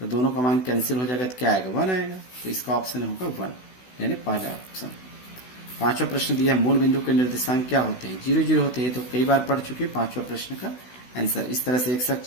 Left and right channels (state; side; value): late; right; 16 ms